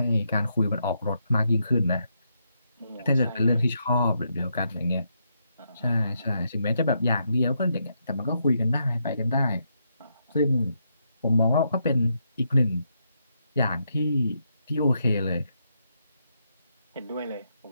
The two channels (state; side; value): inverted; both; correlation -0.80